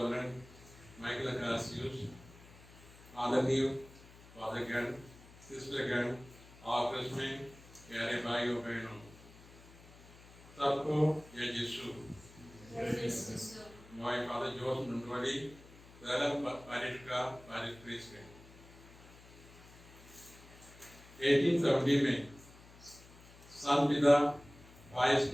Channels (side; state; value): left; noise; hum, 21 dB below the sound